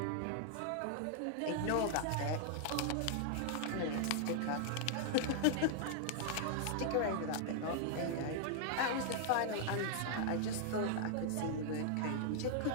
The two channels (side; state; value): both; different; correlation -0.01